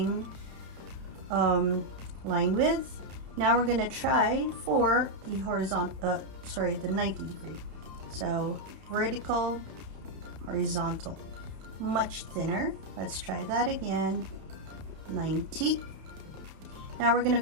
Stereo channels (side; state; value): left; late; 31 ms